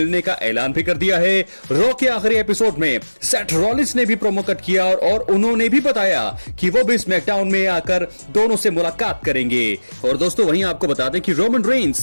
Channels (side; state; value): both; inverted; correlation -1.00